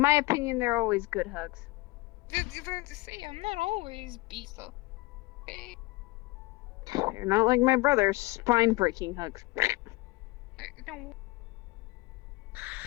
my opinion, they're always good hugs. You have to say I'm not always beast up. Okay. They're not like my brother's spine-breaking hugs. No.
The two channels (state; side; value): quieter; right; 22.0 dB